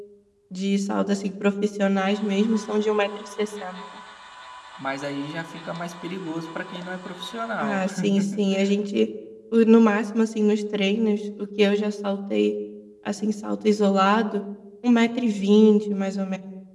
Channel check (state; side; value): identical; both; correlation 1.00